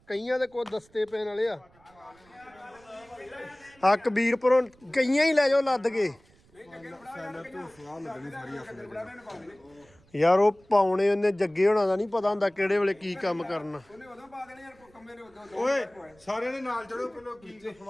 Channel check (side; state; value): right; noise; rumble, 29 dB below the sound